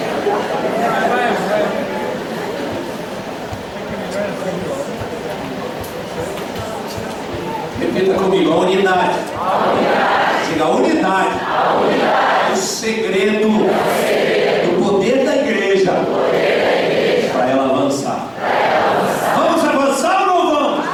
Repita comigo: a unidade. Diga: a unidade. O segredo do poder da igreja para ela avançar. Vamos avançar ou não vamos?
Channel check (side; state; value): both; identical; correlation 1.00